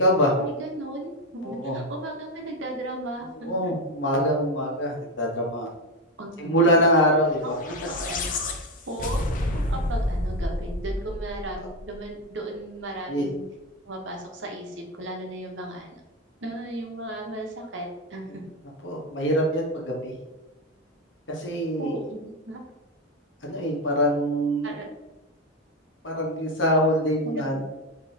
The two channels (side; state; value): both; normal; correlation 0.11